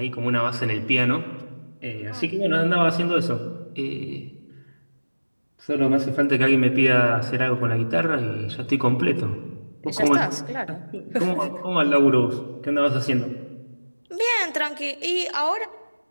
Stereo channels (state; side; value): inverted; both; correlation -1.00